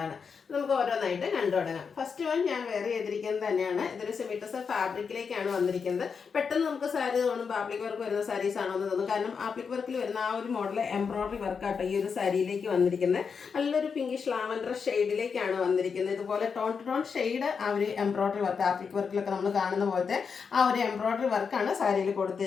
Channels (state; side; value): quieter; right; 5.9 dB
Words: നമുക്ക് ഓരോന്നായിട്ട് കണ്ടു തുടങ്ങാം. ഫസ്റ്റ് വൺ ഞാൻ വെയർ ചെയ്തിരിക്കുന്നത് തന്നെയാണ്. ഇതൊരു സെമിറ്റസ ഫാബ്രിക്കിലേക്കാണ് വന്നിരിക്കുന്നത്. പെട്ടെന്ന് നമുക്ക് സാരി തോന്നുമ്പോൾ ആപ്ലിക് വർക്ക് വരുന്ന സാരീസ് ആണോ എന്ന് തോന്നും. കാരണം ആപ്ലിക് വർക്കിൽ വരുന്ന ആ ഒരു മോഡൽ എംബ്രോയിഡറി വർക്കാട്ടോ ഈ ഒരു സാരിയിലേക്ക് വന്നിരിക്കുന്നത്. നല്ലൊരു പിങ്കിഷ് ലാവൻഡർ ഷെയ്ഡിലേക്കാണ് വന്നിരിക്കുന്നത്. ഇതുപോലെ ടോൺ ടു ടോൺ ഷെയ്ഡ് ആ ഒരു എംബ്രോയിഡറി വർക്ക് ആപ്ലിക് വർക്കിലൊക്കെ നമ്മൾ കാണുന്ന പോലത്തെ ആ ഒരു എംബ്രോയിഡറി വർക്കാണ് സാരിയിൽ